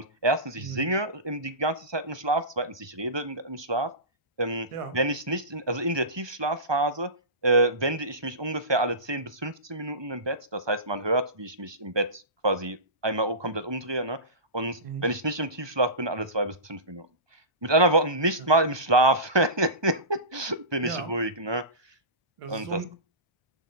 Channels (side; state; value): left; late; 1.2 ms